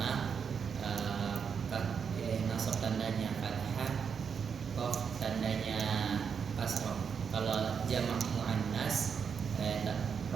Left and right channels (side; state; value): left; quieter; 6.6 dB